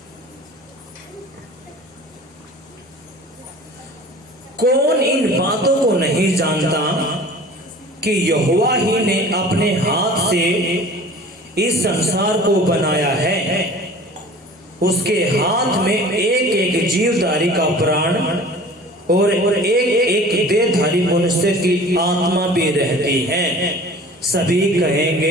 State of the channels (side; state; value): both; normal; correlation 0.44